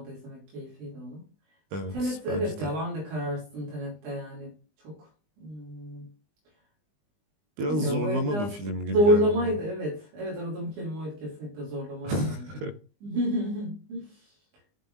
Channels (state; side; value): late; left; 20 ms